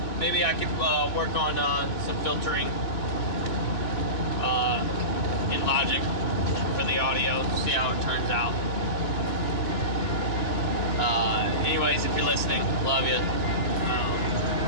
Maybe I could work on some filtering in Logic for the audio, see how it turns out. Anyways, if you're listening, love you.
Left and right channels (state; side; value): late; right; 2.8 ms